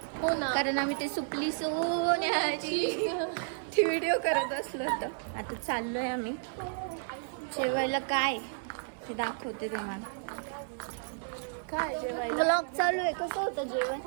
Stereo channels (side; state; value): left; silent; digital silence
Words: हो ना, कारण आम्ही ते सुपली सोन्याची ती व्हिडिओ करत असलो होतं. आता चाललोय आम्ही जेवायला. काय ते दाखवते तुम्हाला. काय जेवायला ब्लॉग चालू आहे. कसं होतं जेवण?